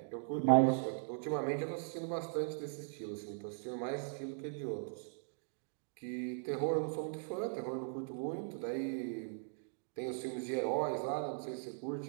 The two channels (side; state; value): left; silent; digital silence